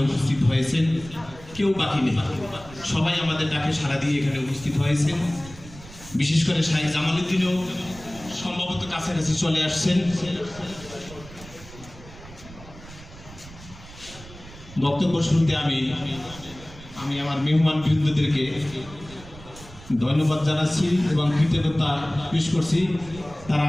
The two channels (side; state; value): right; noise; rumble, 18 dB below the sound